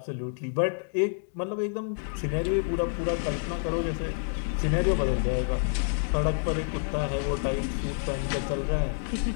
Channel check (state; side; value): silent; right; digital silence